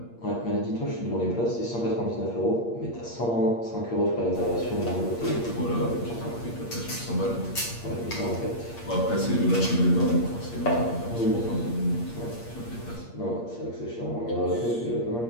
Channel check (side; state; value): right; late; 8.6 ms